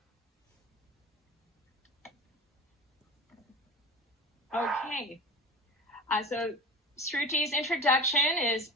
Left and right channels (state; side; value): normal; both; correlation 0.33